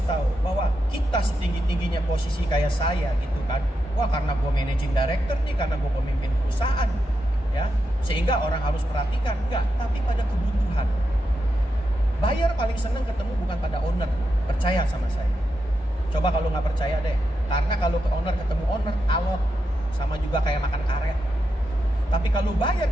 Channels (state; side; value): normal; both; correlation 0.86